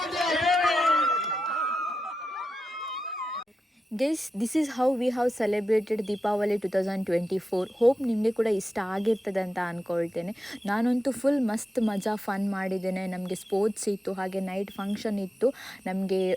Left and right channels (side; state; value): both; normal; correlation 0.90